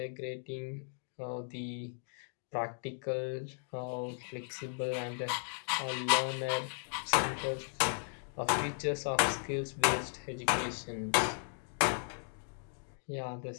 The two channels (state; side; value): silent; right; 54 dB below the other